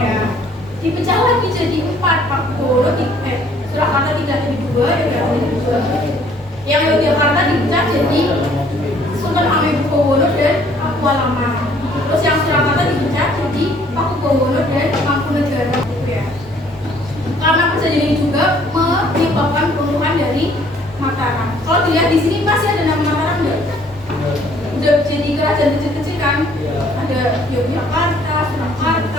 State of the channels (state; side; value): normal; both; correlation 0.60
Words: Dipecah lagi jadi empat, Pakubowono di Surakarta tidak jadi dua, Yogyakarta jadi dua. Yang Yogyakarta dipecah jadi Sultan Hamengkubuwono dan Pakualaman. Terus yang Surakarta dipecah jadi Pakubowono dan Mangkunegaran gitu ya. Karena perjanjian ini juga menyebabkan peruntuhan dari Mataram. Kalau dilihat di sini masih ada nama Mataram nggak? Udah jadi kerajaan kecil-kecil kan? Ada Yogyakarta,